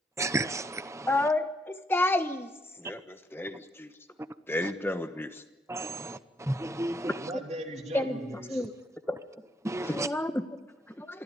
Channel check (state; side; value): normal; both; correlation 0.73